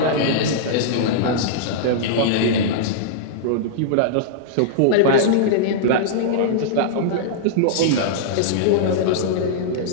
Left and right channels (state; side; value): different; both; correlation -0.02